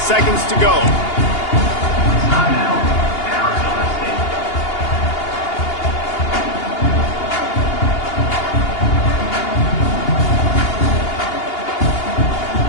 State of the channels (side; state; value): right; late; 2.8 ms